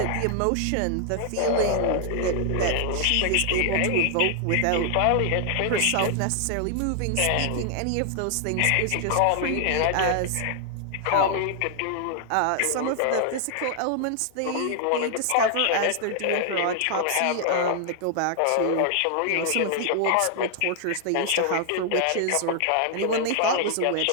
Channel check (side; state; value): both; different; correlation 0.00